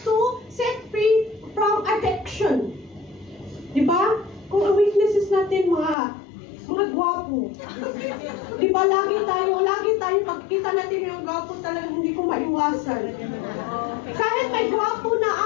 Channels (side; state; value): right; drops out; at 6.0 s